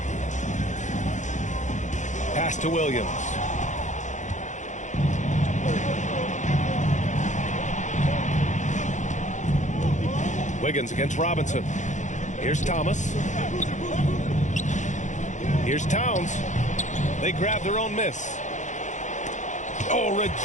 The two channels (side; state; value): right; late; 0.35 ms